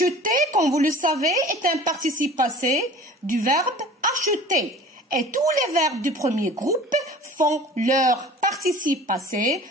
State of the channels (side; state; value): both; normal; correlation 0.43